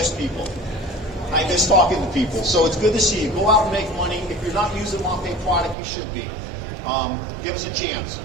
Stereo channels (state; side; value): drops out; left; at 5.8 s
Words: people. I miss talking to people, so it's good to see you. Go out and make money. If you're not using MAPEI product, you should be. Give us a chance.